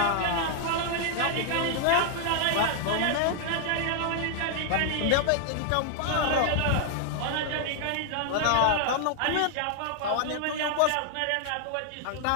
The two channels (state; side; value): different; both; correlation 0.00